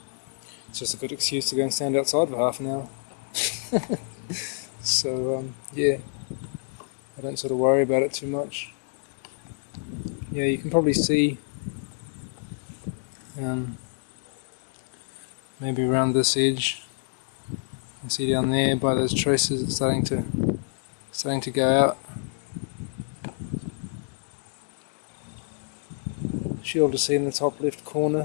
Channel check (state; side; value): silent; right; digital silence